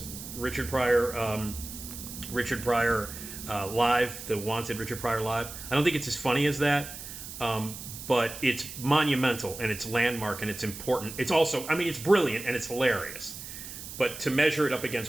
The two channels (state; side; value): noise; right; hiss, 11 dB below the sound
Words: Richard Pryor Live, the Wanted Richard Pryor Live. I don't think it's as funny as that, but it's monumental, and it's landmark, and it's important. It's also... it's brilliant, and it's hilarious. But to measure it up